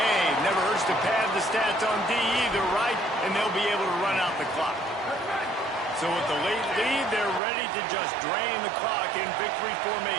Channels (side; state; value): left; drops out; at 7.4 s